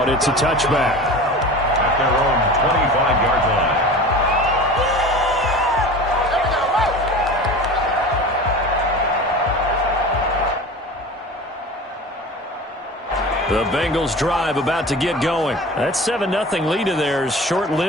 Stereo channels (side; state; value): both; normal; correlation 0.36